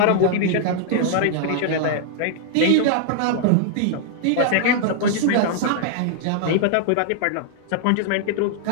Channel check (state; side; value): different; both; correlation -0.01